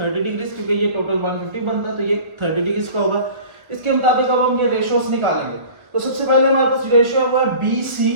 डिग्रीज, क्योंकि ये टोटल 150 बनता है, तो ये 30 डिग्रीज का होगा। इसके मुताबिक अब हम ये रेशियोस निकालेंगे। तो सबसे पहले हमारे पास रेशियो है वो है BC,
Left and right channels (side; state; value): left; late; 1.2 ms